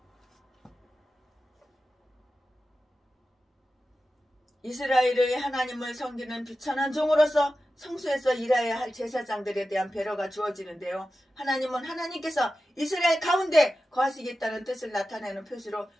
이스라엘의 하나님을 섬기는 비천한 종으로서 성소에서 일해야 할 제사장들에 대한 배려가 주어지는데요. 하나님은 하나님께서 이스라엘 가운데 거하시겠다는 뜻을 나타내는 표시로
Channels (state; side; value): normal; both; correlation 0.93